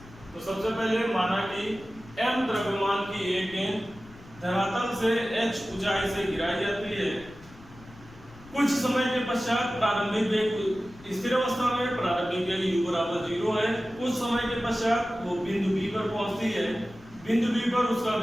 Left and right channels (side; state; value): left; noise; rumble, 21 dB below the sound